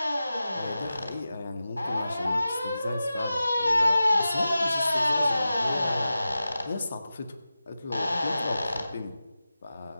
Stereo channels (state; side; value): inverted; both; correlation -0.93